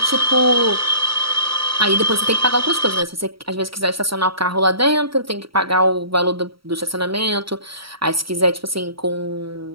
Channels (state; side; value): late; left; 0.75 ms